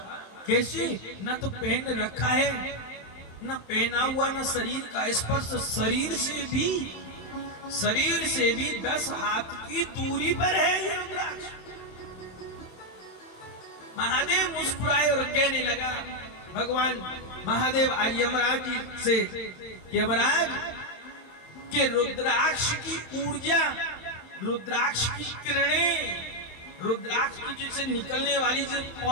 कैसे, न तो पहन रखा है, न पहना हुआ, न शरीर का स्पर्श, शरीर से भी 10 हाथ की दूरी पर है ये रुद्राक्ष। महादेव मुस्कुराए और कहने लगा, भगवान महादेव आज यमराज जी से, यमराज के रुद्राक्ष की ऊर्जा, रुद्राक्ष की किरणें, रुद्राक्ष की जैसे निकलने वाली जो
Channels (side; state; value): right; late; 27 ms